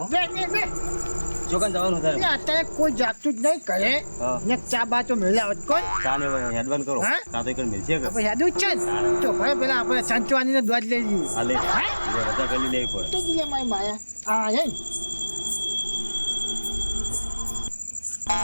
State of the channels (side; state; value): both; inverted; correlation -1.00